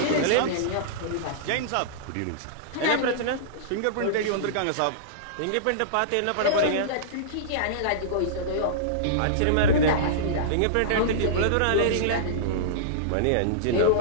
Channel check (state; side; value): different; both; correlation -0.03